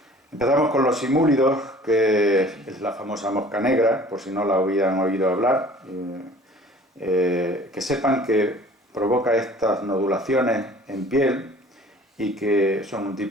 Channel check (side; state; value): both; normal; correlation 0.49